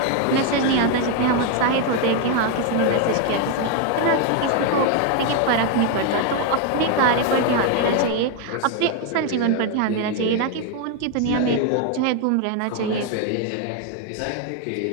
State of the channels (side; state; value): both; different; correlation 0.01